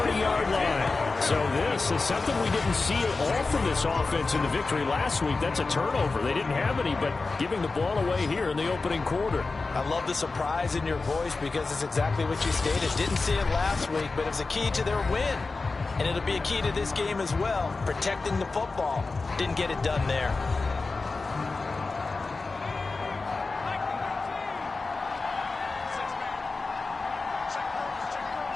line. So this is something we didn't see at all from this offense in the victory last week. That's a turnover. They didn't have any, but giving the ball away here in the opening quarter. I love the surprise in your voice because it's exactly what you stated. Didn't see it last week, but it was a key to their win. And it'll be a key to this game as well, protecting the football. Didn't get it done there.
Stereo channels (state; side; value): quieter; right; 3.8 dB